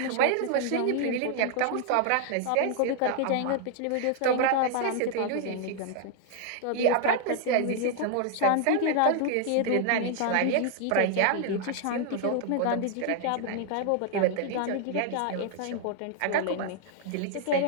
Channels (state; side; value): different; both; correlation 0.00